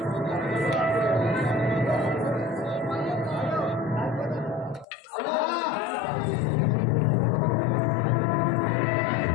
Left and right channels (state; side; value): drops out; right; at 4.9 s